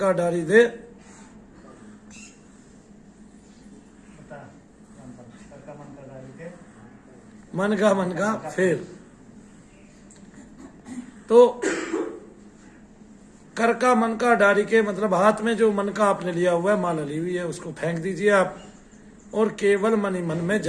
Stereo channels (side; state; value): both; identical; correlation 1.00